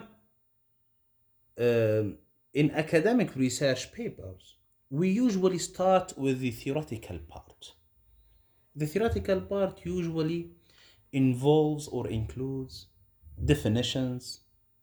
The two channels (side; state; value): both; identical; correlation 1.00